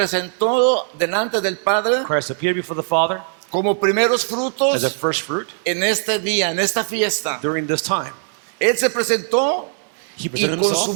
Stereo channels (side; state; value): left; silent; 60 dB below the other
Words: delante del Padre Christ appeared before the Father como primeros as a frutos first fruit en este día, en esta fiesta. during this time. Él se presentó He y presented con su himself,